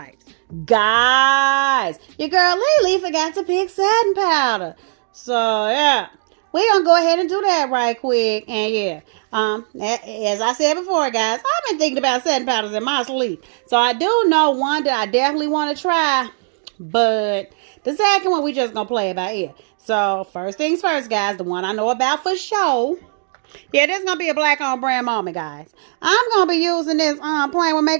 Guys, your girl Lily forgot to pick satin powder. So, yeah, we're going to go ahead and do that right quick. And, yeah, as I said before, guys, I've been thinking about satin powders in my sleep. So, I do know one that I definitely want to try. But the second one, we just going to play about it. So, first things first, guys, the one I know about for sure. Yeah, this is going to be a black on brand moment, guys. I'm going to be using this Playing with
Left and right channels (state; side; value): silent; left; digital silence